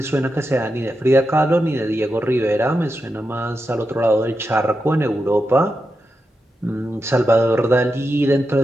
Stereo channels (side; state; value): both; normal; correlation 0.88